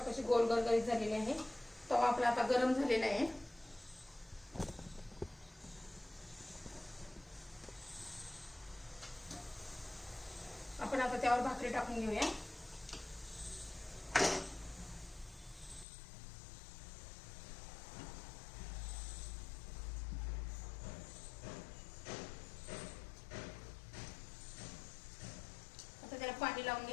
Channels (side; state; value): right; drops out; at 15.9 s